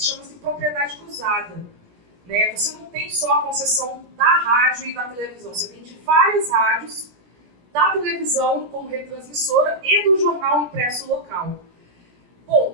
Chama-se propriedade cruzada. Né? Você não tem só a concessão da rádio e da televisão, você tem de várias rádios, da televisão como retransmissora e do jornal impresso local. Bom, o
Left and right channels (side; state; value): left; late; 17 ms